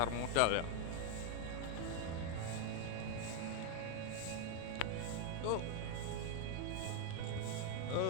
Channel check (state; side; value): different; both; correlation 0.01